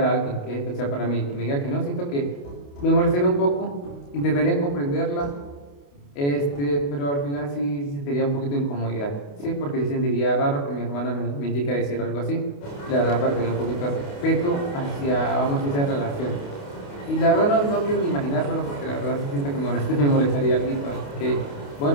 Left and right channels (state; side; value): late; right; 28 ms